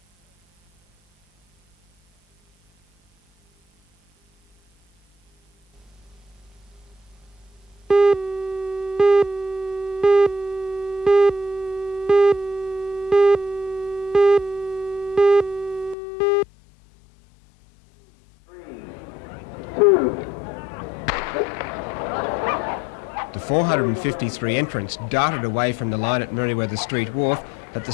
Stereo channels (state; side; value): drops out; right; at 16.0 s